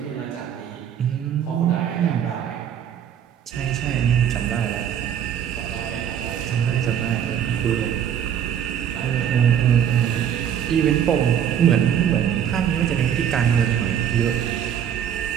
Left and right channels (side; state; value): left; quieter; 9.1 dB